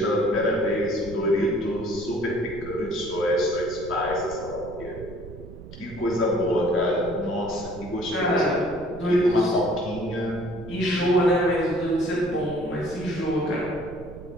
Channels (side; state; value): right; noise; rumble, 15 dB below the sound